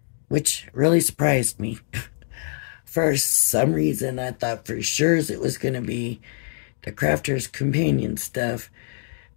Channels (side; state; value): right; silent; 63 dB below the other